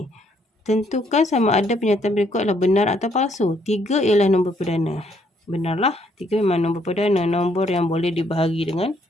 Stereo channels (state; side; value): normal; both; correlation 0.69